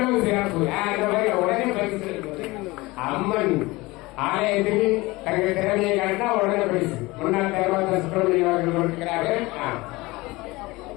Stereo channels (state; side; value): quieter; right; 21.7 dB